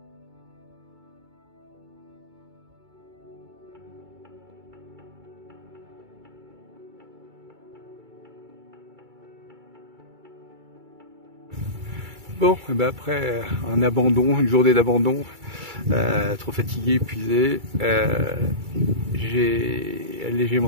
Bon, et ben après un abandon, une journée d'abandon, trop fatigué, épuisé, j'ai allégé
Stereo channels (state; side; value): late; left; 2.3 ms